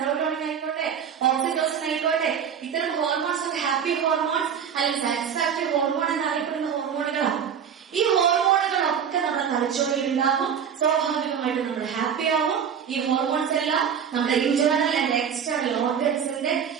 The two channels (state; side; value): quieter; left; 7.7 dB